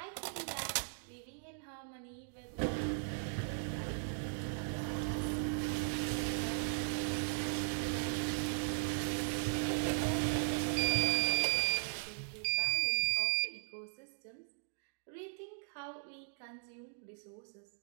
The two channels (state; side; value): silent; left; digital silence